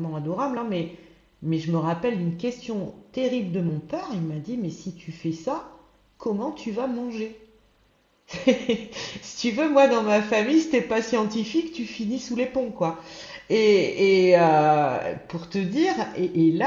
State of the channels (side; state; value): both; identical; correlation 1.00